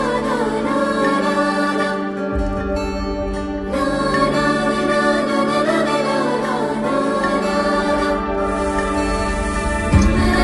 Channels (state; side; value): identical; both; correlation 1.00